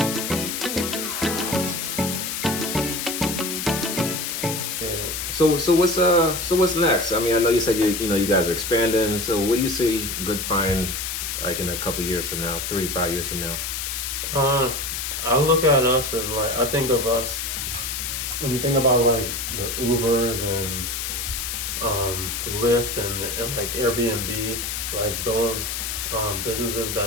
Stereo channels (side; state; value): left; noise; hiss, 3 dB below the sound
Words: So what's next? I mean, I know you said you guys are expanding. So what do you see Good Fine like in a couple years from now, 3-5 years from now? I look at us as like, I think of us when you think about like the Ubers and Lyft and like Airbnb, like those businesses